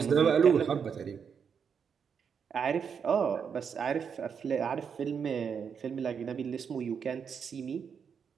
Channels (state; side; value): quieter; left; 6.8 dB